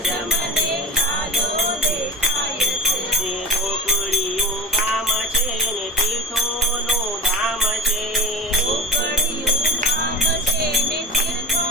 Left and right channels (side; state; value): both; normal; correlation 0.28